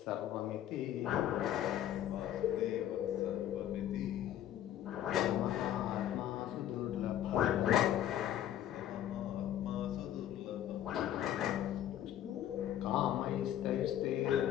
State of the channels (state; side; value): quieter; right; 11.5 dB